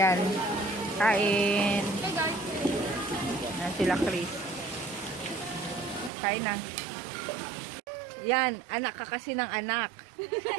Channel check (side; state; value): left; drops out; at 6.1 s